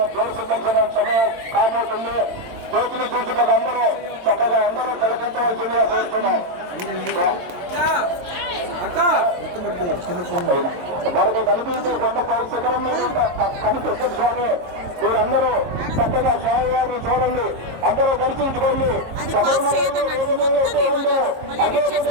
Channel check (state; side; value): late; left; 22 ms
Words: జ్యోతి దర్శనం సమయం కాబోతుంది జ్యోతిని చూసుకొని అందరూ చక్కగా అందరూ తిలకించవలసిందిగా కోరుతున్నాం మనకు కనిపించే కొండపై శిఖరం మీద కనిపిస్తుంది స్వామి మీరందరూ చక్కగా స్వామివారిని చూడండి అందరూ దర్శించుకోండి